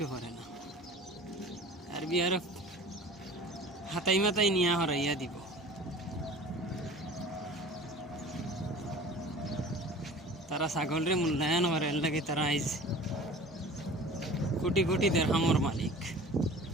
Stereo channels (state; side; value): normal; both; correlation 0.42